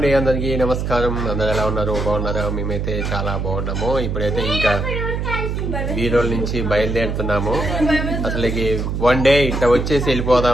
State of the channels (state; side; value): noise; right; hum, 2 dB below the sound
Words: అందరికి నమస్కారం. అందరు ఎలా ఉన్నారు? బాగున్నారా? మేమైతే చాలా బాగున్నాము. ఇప్పుడైతే ఇంకా బీరోల్ నుంచి బయలుదేరుతున్నాము. అసలుకి 1 డే ఇట్లా వచ్చేసి